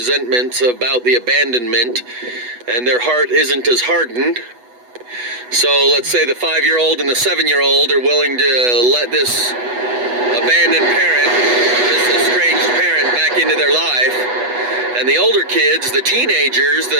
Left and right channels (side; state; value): left; late; 8.1 ms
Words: about the abandonment and their heart isn't as hardened. So let's say the 5-year-old and the 7-year-old are willing to let this abandoned parent, this estranged parent, back into their life. And the older kids, the teenagers,